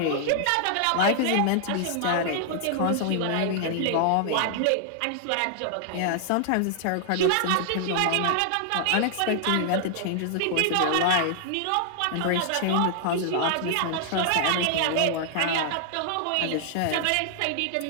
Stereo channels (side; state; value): both; different; correlation 0.00